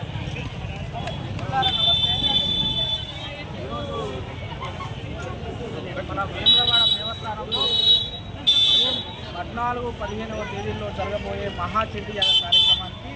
మన వేములవాడ దేవస్థానంలో 14-15వ తేదీల్లో జరగబోయే మహాచండీయాగ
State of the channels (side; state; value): both; identical; correlation 1.00